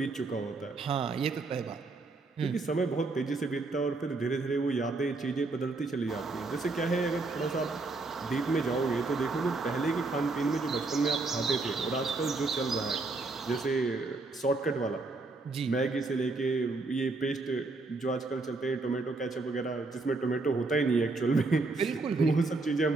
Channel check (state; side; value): quieter; left; 3.5 dB